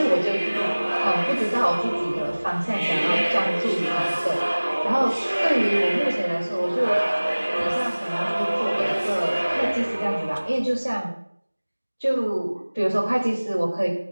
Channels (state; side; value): inverted; both; correlation -1.00